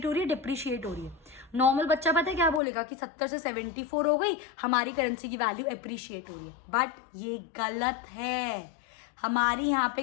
हो रही है, डिप्रिशिएट हो रही है। नॉर्मल बच्चा पता है क्या बोलेगा कि 70 से 74 हो गई, हमारी करेंसी की वैल्यू अप्रिशिएट हो रही है। बट ये गलत है, हमारी यहाँ पे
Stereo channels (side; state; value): right; drops out; at 2.6 s